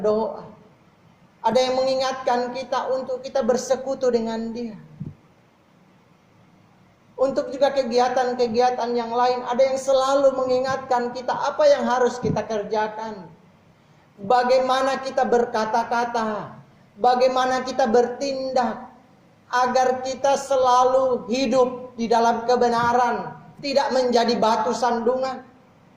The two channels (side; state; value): both; identical; correlation 1.00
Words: Ada yang mengingatkan kita untuk kita bersekutu dengan Dia. Untuk juga kegiatan-kegiatan yang lain, ada yang selalu mengingatkan kita apa yang harus kita kerjakan. Bagaimana kita berkata-kata, bagaimana kita bertindak, agar kita selalu hidup di dalam kebenaran, tidak menjadi batu sandungan.